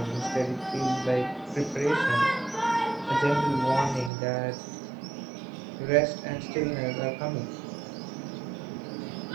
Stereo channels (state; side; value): drops out; left; at 4.1 s